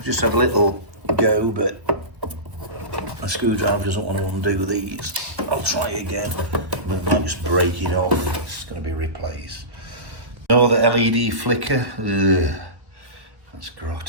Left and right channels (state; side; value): late; left; 1.2 ms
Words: just have a little go, but my screwdriver doesn't want to undo these. I'll try again. We might just break it off. It's going to be replaced. Oh, the LED flicker. Ugh, that's